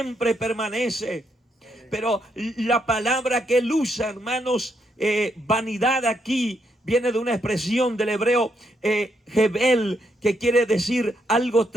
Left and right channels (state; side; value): normal; both; correlation 0.77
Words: permanece. Pero la palabra que él usa, hermanos, vanidad, aquí viene de una expresión del hebreo hebel, que quiere decir algo